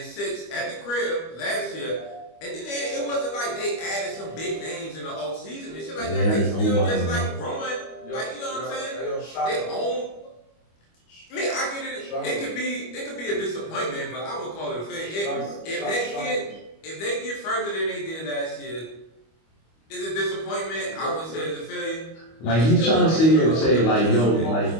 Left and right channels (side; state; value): right; late; 25 ms